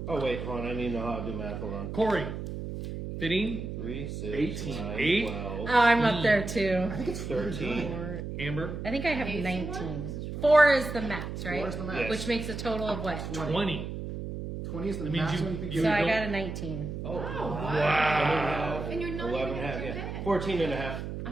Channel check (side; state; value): right; noise; hum, 6 dB below the sound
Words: Oh, wait, hold on. I need to know how to do math. Hold on. Corey, 15, 3, 6, 18. 9, 8. 12, Oh, I'm up there too. I think it's 13. Amber, I think I have 19. 4 is the max, right? 4 is the max. Yes. Which makes a total of what? 20. 20 is the That means maximum you- you can you So get. I don't- got a 19. Oh, Wow. And you're not 11 even and a half, at your yeah. bed. 14 and a half.